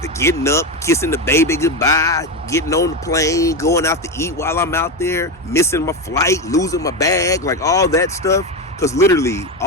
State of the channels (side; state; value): both; normal; correlation 0.15